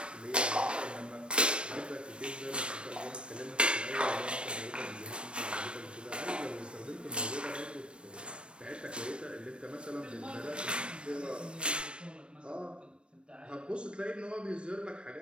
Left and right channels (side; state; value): left; late; 0.057 ms